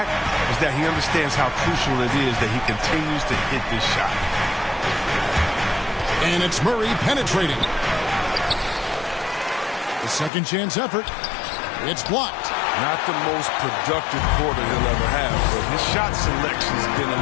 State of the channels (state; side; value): drops out; right; at 10.3 s